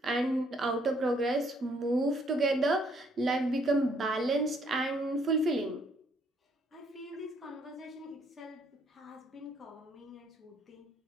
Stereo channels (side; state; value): both; normal; correlation 0.67